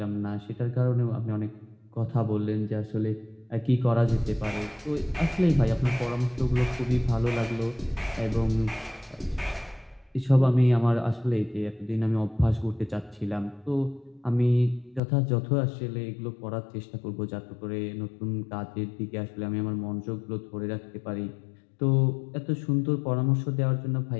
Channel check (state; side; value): drops out; right; at 15.0 s